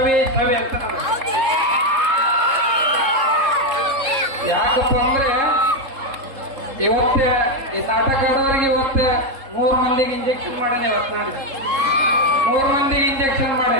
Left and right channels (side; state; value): left; late; 3.7 ms